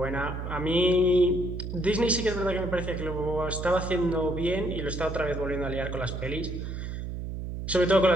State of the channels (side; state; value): right; noise; hum, 6 dB below the sound